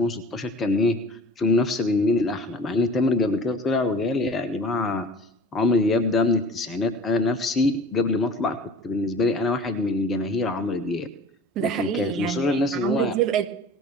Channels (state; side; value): normal; both; correlation 0.41